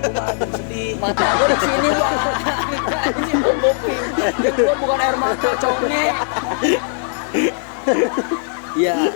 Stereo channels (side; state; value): right; silent; digital silence